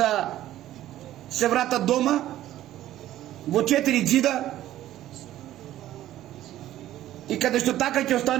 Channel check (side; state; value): left; quieter; 13.5 dB